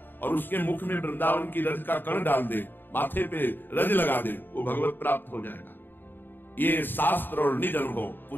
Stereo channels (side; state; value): right; late; 0.093 ms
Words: और उसके मुख में वृंदावन की रज का कण डाल दे माथे पे रज लगा दे, वो भगवत प्राप्त हो जाएगा। ये शास्त्र और निज अनुभव